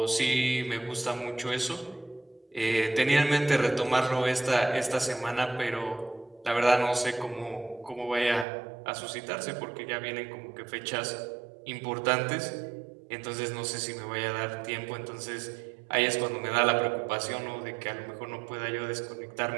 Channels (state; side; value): drops out; left; at 8.5 s